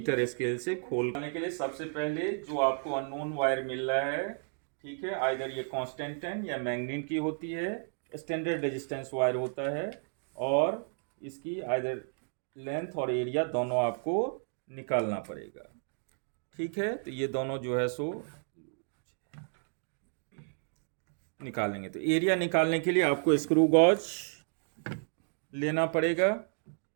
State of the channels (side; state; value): left; silent; 56 dB below the other